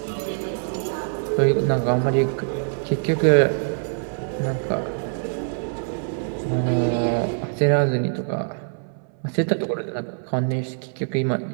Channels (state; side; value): silent; left; 63 dB below the other